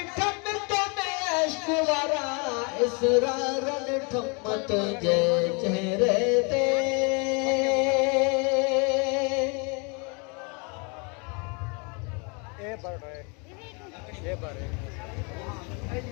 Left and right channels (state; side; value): quieter; right; 33.2 dB